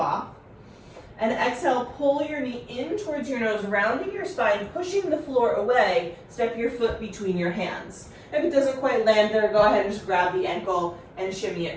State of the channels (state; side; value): identical; both; correlation 1.00